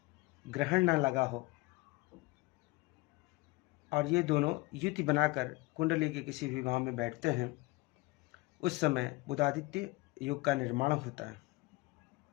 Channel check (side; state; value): right; quieter; 22.2 dB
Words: ग्रहण न लगा हो और ये दोनों युति बनाकर कुंडली के किसी भी भाव में बैठते हैं, उस समय बुधादित्य योग का निर्माण होता है।